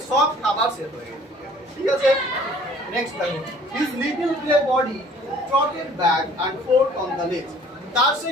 সব খাবার শেষ হয়ে গেছে, ঠিক আছে। নেক্সট দেখো his little grey body trotted back and forth on the ledge. তার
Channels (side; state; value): both; normal; correlation 0.53